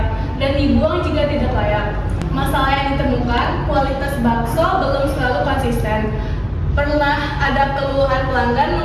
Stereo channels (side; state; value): both; identical; correlation 1.00